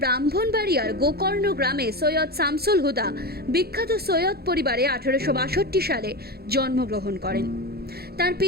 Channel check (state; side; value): late; left; 0.46 ms